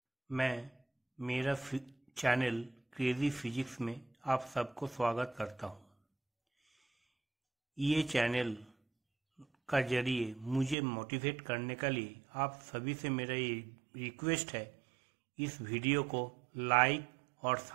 मैं मेरा channel crazy physics में आप सबको स्वागत करता हूँ। ये चैनल का जरिए मुझे मोटिवेट करने के लिए आप सभी से मेरा ये रिक्वेस्ट है, इस वीडियो को लाइक और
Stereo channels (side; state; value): left; drops out; at 10.8 s